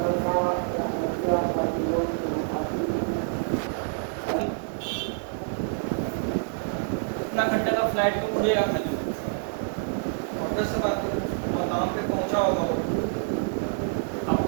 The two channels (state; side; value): silent; left; 60 dB below the other